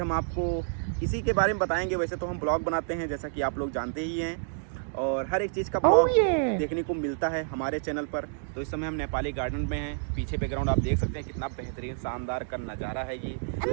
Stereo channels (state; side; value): silent; left; digital silence